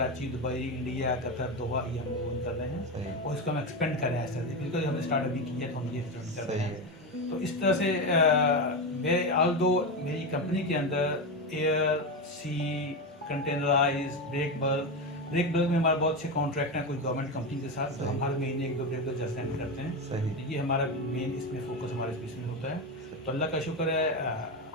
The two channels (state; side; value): normal; both; correlation 0.15